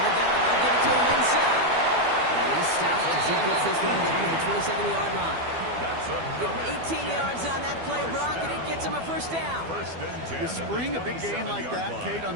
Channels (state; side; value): late; left; 12 ms